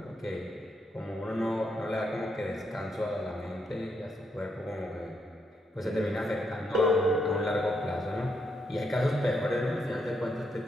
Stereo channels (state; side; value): normal; both; correlation 0.78